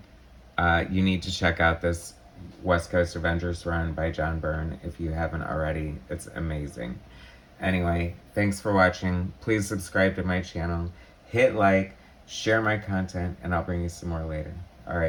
You need to check out this West Coast Avengers run by John Byrne if you haven't already. It's amazing. Anyway, thanks for watching. Please subscribe to my channel. Hit like, share my content, and I'll bring you some more later.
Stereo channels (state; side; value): identical; both; correlation 1.00